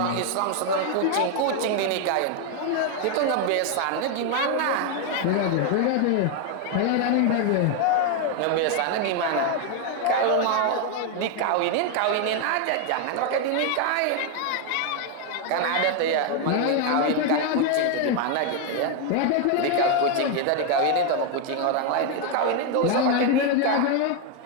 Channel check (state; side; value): different; both; correlation 0.01